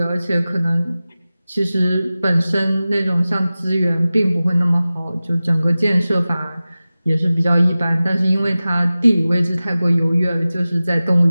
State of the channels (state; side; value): inverted; both; correlation -0.96